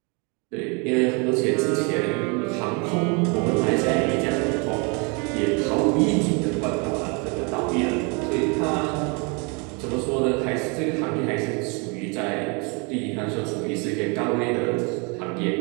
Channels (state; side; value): quieter; left; 32.4 dB